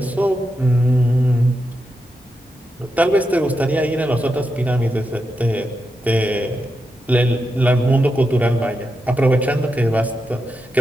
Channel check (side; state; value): both; normal; correlation 0.87